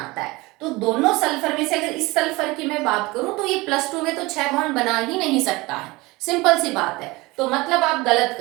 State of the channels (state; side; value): quieter; left; 22.4 dB